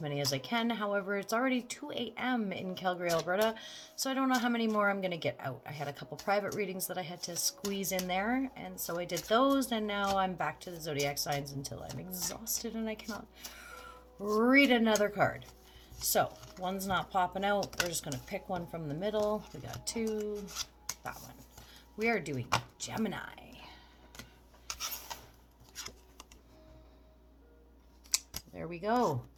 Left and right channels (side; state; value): both; identical; correlation 1.00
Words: as I can. However, it's already 2 a.m. in Calgary, Alberta, so I don't know how many more I'm going to get out. I had a couple private readings that I had to squeeze in there, and so I did those, and now I'm back to the Zodiac signs until I'm exhausted and I cannot read another card. So, one's not popping out. We're just going to pick one from the middle. We got two. That one. We are doing Gemini. There we go.